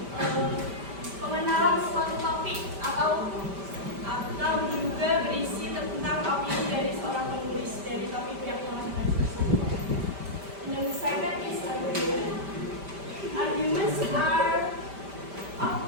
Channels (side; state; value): left; late; 5.1 ms